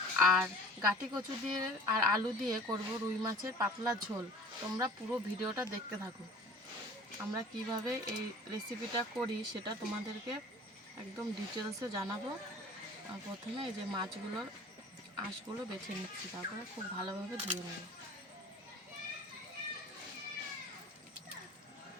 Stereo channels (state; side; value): normal; both; correlation 0.45